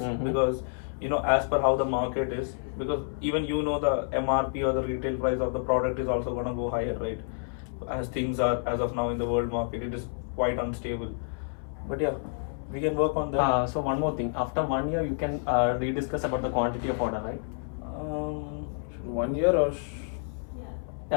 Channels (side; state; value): right; silent; 59 dB below the other